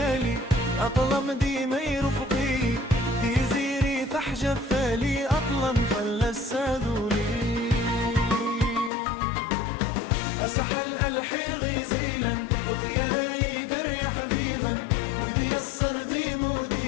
أطلم ديما يرفقي في زيري تحجب فالي أطلم فلسادولي أسحل ألحي غيزيلا وطياي قري حبيبا ودي الصردي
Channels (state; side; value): drops out; right; at 8.9 s